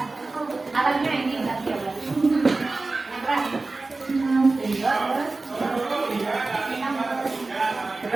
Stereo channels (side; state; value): left; quieter; 3.5 dB